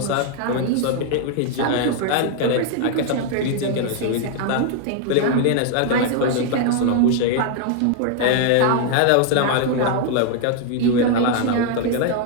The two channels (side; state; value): both; different; correlation 0.00